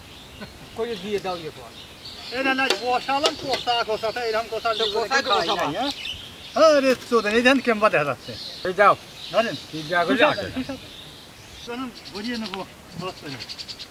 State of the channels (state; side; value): identical; both; correlation 1.00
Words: করে দিয়ে দাও ইয়ে পর এই না না বসালাম কষাটা এরকম কষা কষাই তো বসাবা। হ্যাঁ রে চোদ এই দেন কেমবা দেখা যাচ্ছে এই যাও ধরেন কি যা করে চলুন বুঝিয়ে নেবো বসতে